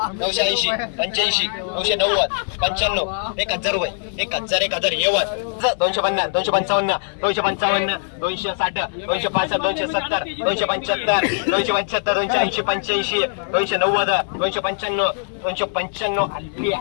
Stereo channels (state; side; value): silent; right; 65 dB below the other